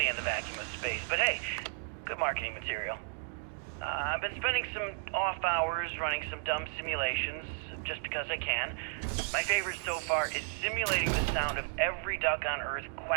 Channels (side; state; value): left; silent; 55 dB below the other